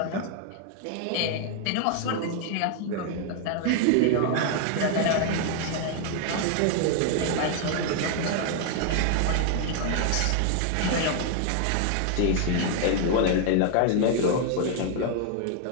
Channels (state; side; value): different; both; correlation 0.00